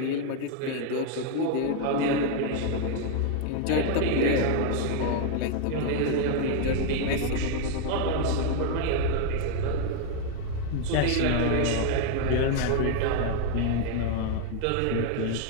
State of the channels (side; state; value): both; different; correlation 0.00